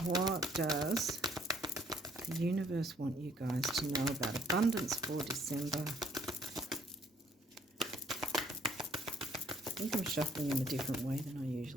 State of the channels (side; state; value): both; normal; correlation 0.64